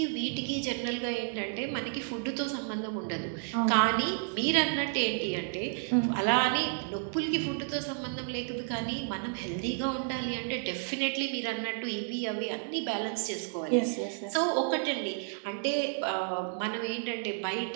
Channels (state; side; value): silent; left; 57 dB below the other